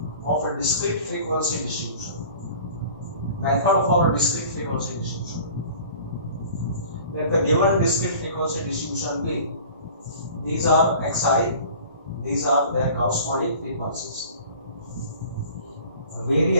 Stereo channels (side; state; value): both; inverted; correlation -0.45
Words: of a discrete frequency distribution. Method for a discrete frequency distribution. Let the given discrete frequency distribution be, these are xi, these are their corresponding frequencies.